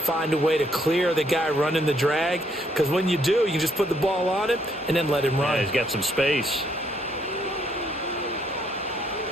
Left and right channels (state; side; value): normal; both; correlation 0.70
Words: a way to clear the guy running the drag, because when you do, you can just put the ball on him and then let him run. Yeah, he's got some space.